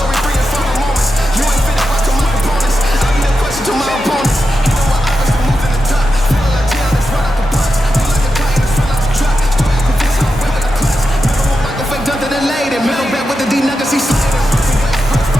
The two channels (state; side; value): normal; both; correlation 0.89